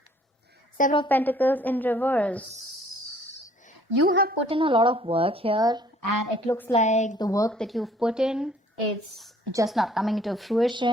Seven of Pentacles in reverse. You have put in a lot of work here, and it looks like the work that you've put in is just not coming into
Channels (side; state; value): both; normal; correlation 0.58